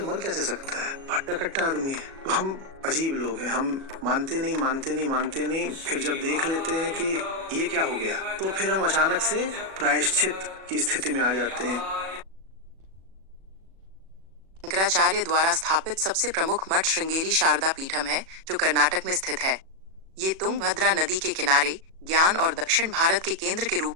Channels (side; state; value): left; late; 37 ms